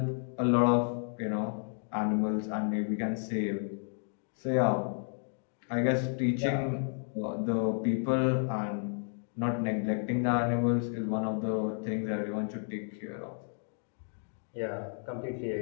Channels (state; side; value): silent; right; 56 dB below the other